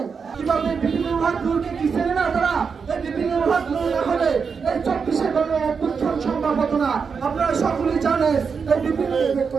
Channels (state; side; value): quieter; left; 5.7 dB